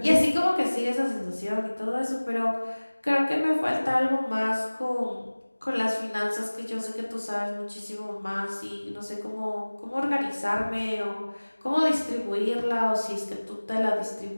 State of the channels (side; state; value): both; inverted; correlation -1.00